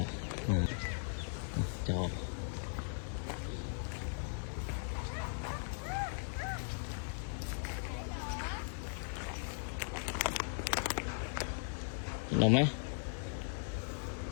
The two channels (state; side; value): silent; right; digital silence